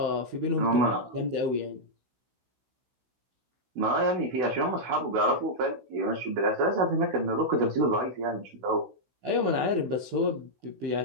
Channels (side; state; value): left; late; 16 ms